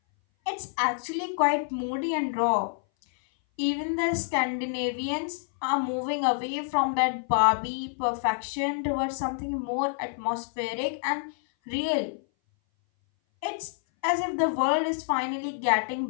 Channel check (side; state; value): right; silent; 58 dB below the other